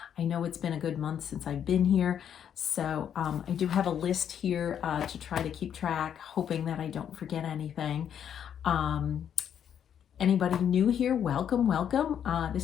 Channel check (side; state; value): right; quieter; 8.9 dB